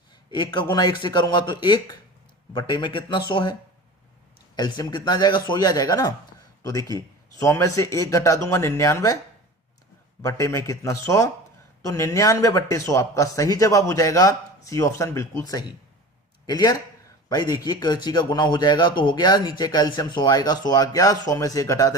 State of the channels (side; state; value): both; normal; correlation 0.35